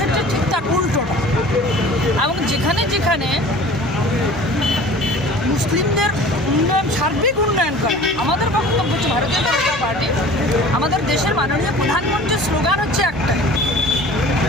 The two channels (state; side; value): noise; right; hum, 13 dB below the sound